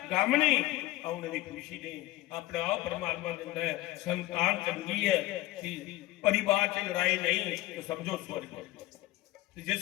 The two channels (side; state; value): right; quieter; 17.2 dB